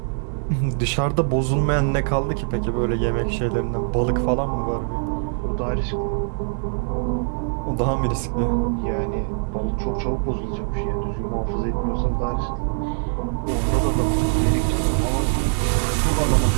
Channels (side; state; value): left; silent; 64 dB below the other